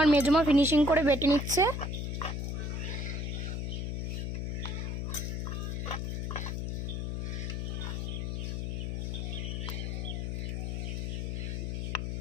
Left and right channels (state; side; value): noise; left; hum, 1 dB below the sound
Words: মেজমা ফিনিশিং করে বেটে নিচ্ছে।